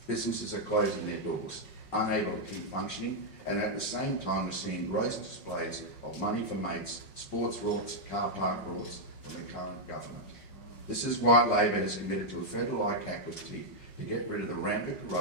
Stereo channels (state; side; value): late; right; 5.5 ms